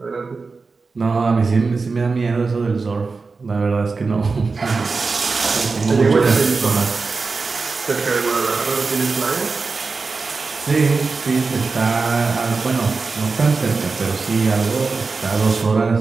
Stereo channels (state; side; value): quieter; left; 4.3 dB